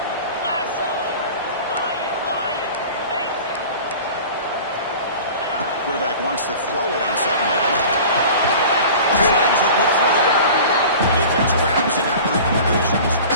Quarterback wants to throw it on 2nd down. Slides it with throw. The defense grabs it after the completion. He's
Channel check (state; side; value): inverted; both; correlation -0.39